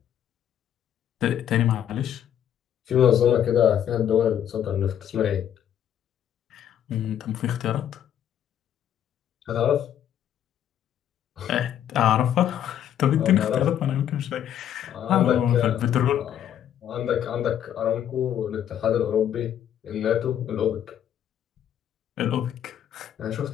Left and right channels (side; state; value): right; quieter; 10.1 dB